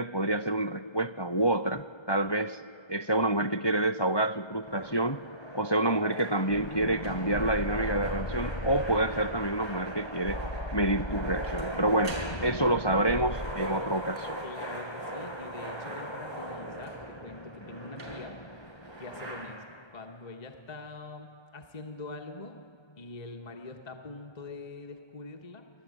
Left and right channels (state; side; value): late; right; 1.3 ms